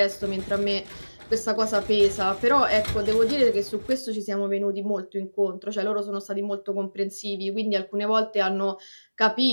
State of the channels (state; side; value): inverted; both; correlation -1.00